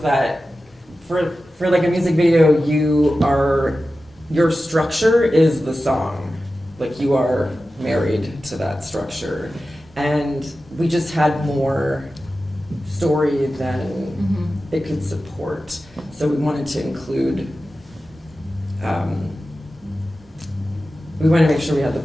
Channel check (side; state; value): both; normal; correlation 0.94